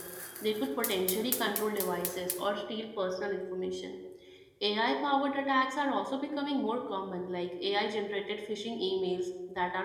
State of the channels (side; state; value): both; identical; correlation 1.00